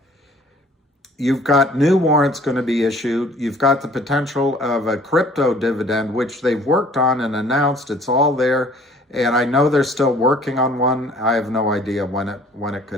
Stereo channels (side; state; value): both; normal; correlation 0.54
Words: You've got new warrants going to be issued. You've got the potential of a crypto dividend, which they've worked on and announced. It's all there. And I know they're still working on one. I have no idea when it